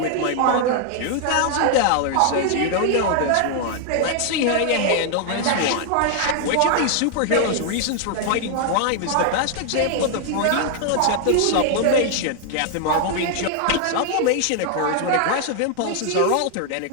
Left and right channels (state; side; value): different; both; correlation 0.00